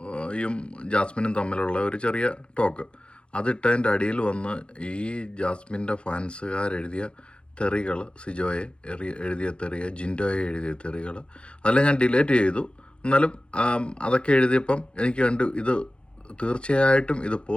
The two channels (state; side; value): late; right; 0.057 ms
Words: ജാസ്മിനും തമ്മിലുള്ള ഒരു ചെറിയ ടോക്ക്. അതിട്ടതിൻ്റെ അടിയിൽ വന്ന് ഈ ജാസ്മിൻ്റെ ഫാൻസുകാരെഴുതിയ തെറികൾ, സിജോയെ എഴുതിയ തെറിയ, ജിൻഡോയെ എഴുതിയ തെറികൾ, അതെല്ലാം ഞാൻ ഡിലീറ്റ് ചെയ്തു. എന്നാലും അതൊക്കെ എഴുതിയപ്പം എനിക്ക് കണ്ടു ഇത് തീർച്ചയായിട്ടും ഇത്